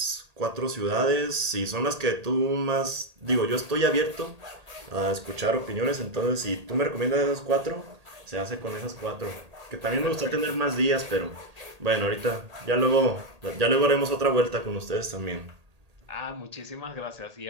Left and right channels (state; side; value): late; left; 1.8 ms